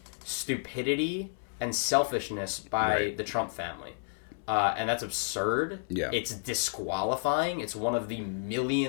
stupidity and selfishness by the Trump family. And that's absurd. Yeah. It's disqualifying. It's one of the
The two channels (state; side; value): silent; right; digital silence